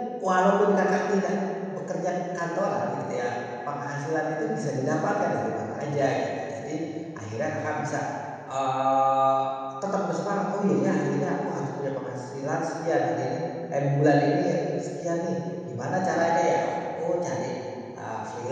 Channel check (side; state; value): both; identical; correlation 1.00